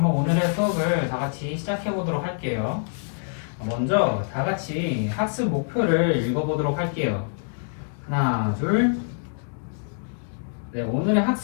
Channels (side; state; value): right; silent; digital silence